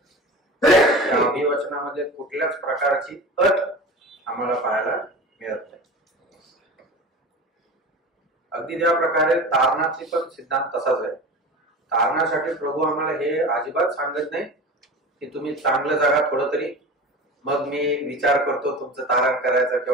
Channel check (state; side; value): normal; both; correlation 0.33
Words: त्या अभिवचनामध्ये कुठल्याच प्रकारची अट आम्हाला पाहायला मिळत नाही. अगदी ज्या प्रकारे तारणाची पण सिद्धांत तसाच आहे. तारणासाठी प्रभू आम्हाला हे अजिबात सांगत नाही की तुम्ही चांगलं जगा थोडं तरी, मग मी विचार करतो तुमचं तारण करायचं